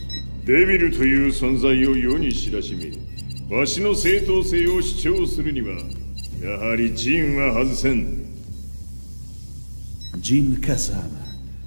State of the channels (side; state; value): both; inverted; correlation -1.00